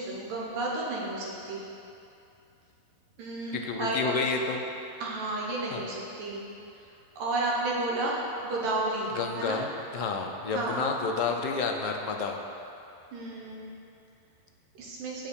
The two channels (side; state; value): left; late; 11 ms